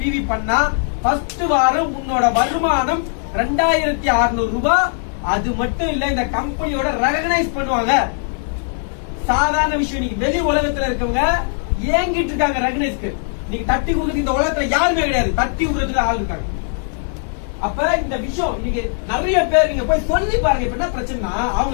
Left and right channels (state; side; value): silent; right; digital silence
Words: பண்ணா ஃபர்ஸ்ட் வாரம் உன்னோட வருமானம் 2600 ரூபாய். அது மட்டும் இல்ல, இந்த கம்பெனியோட ரெகனைஸ் பண்ணுவாங்க. சாதாரண விஷயம். நீங்க வெளி உலகத்துல இருக்கவங்க ஏங்கிட்டு இருக்காங்க ரெகனைஸ்க்கு. நீங்க தட்டி கொடுத்து இந்த உலகத்துல யாருமே கிடையாது. தட்டி கொடுக்கறதுக்கு ஆள் இருக்காங்க. அப்ப இந்த விஷயம் இன்னைக்கு நிறைய பேர் நீங்க போய் சொல்லி பாருங்க. இப்ப என்ன பிரச்சனைனா அவங்க